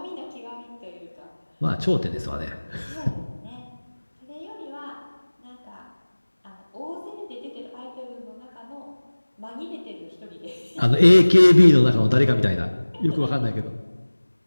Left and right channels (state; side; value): inverted; both; correlation -1.00